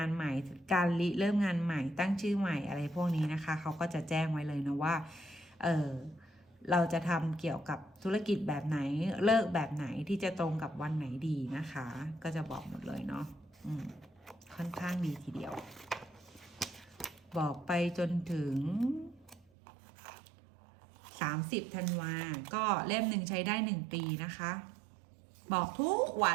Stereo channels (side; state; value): left; drops out; at 19.5 s